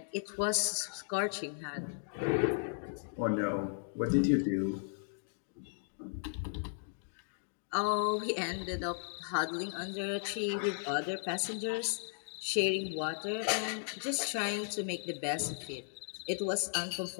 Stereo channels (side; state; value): right; silent; digital silence